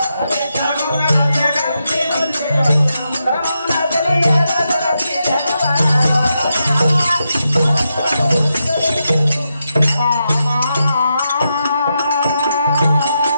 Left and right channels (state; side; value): inverted; both; correlation -0.85